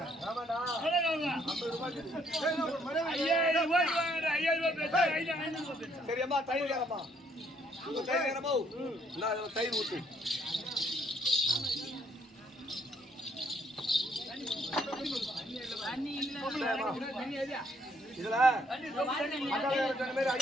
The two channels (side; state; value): both; normal; correlation 0.68